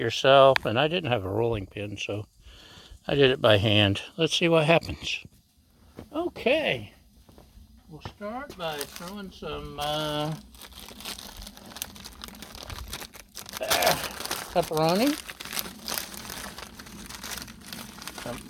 and I didn't have a rolling pin, so I did it by hand. Let's see what happens. Okay, we'll start by throwing some pepperoni, some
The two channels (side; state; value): both; identical; correlation 1.00